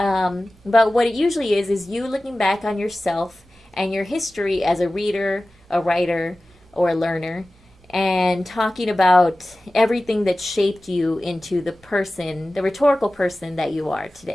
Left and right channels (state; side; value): normal; both; correlation 0.96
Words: what it usually is you looking back on yourself and your history as a reader, a writer, or a learner, and talking about everything that shaped you into the rhetorical person that you are